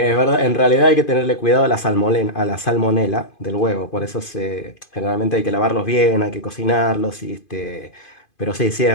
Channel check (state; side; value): late; right; 2.5 ms